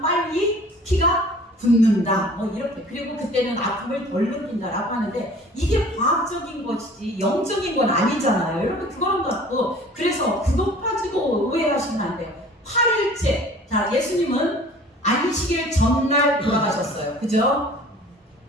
피가 붙는다. 뭐 이렇게. 그리고 그때는 아픔을 덜 느낀다라고 하는데 이게 과학적인 것이지 영적인 건 아니잖아요. 여러분 그거는 갖고 그래서 그것 가지고 오해하시면 안 돼요. 8일째. 자, 예수님은 안식일 전날 돌아가셨어요. 그죠?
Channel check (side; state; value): both; normal; correlation 0.47